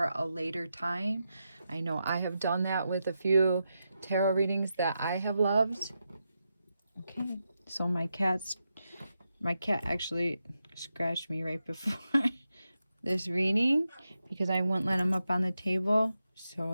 a later time. I know I have done that with a few tarot readings that I have loved. Okay, so my cat actually scratched me right before this reading because I wouldn't let him up on the table, so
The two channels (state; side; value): inverted; both; correlation -0.87